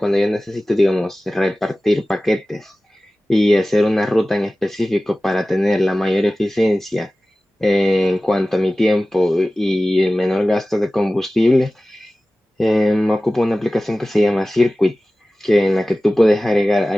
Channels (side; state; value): both; normal; correlation 0.97